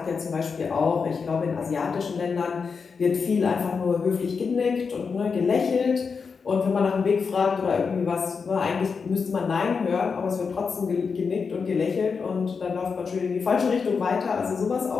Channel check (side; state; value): right; quieter; 5.4 dB